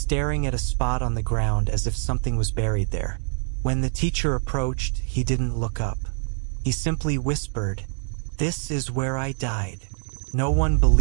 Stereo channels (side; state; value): left; silent; digital silence